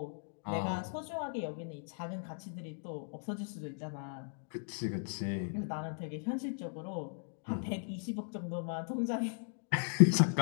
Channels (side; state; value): right; silent; digital silence